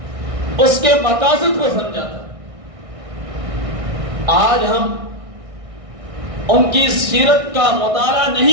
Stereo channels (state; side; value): late; left; 1.6 ms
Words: اس کے مقاصد کو سمجھا تھا. آج ہم ان کی سیرت کا مطالعہ